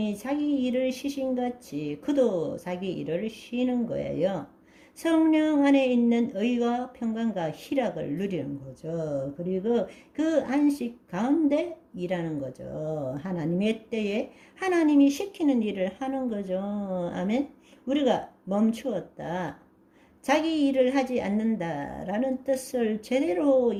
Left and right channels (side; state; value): both; identical; correlation 1.00